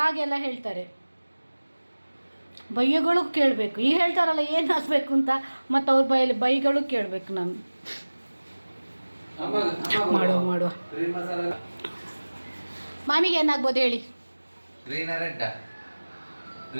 ಹೇಳ್ತಾರೆ. ಬೈಗಳು ಕೇಳಬೇಕು. ಈಗ ಹೇಳ್ತಾರಲ್ಲ ಏನು ಹಾಕಬೇಕು ಅಂತ, ಮತ್ತು ಅವ್ರ ಬೈಯಲ್ಲಿ ಬೈಗಳು ಕೇಳಬೇಕು ನಾನು. ಮಾಡುವ ಗ್ರೀನ್ ಮಸಾಲ ಮಾಮಿಗೆ ಏನಾಗ್ಬೋದು ಹೇಳಿ? Green red,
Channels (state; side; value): inverted; both; correlation -1.00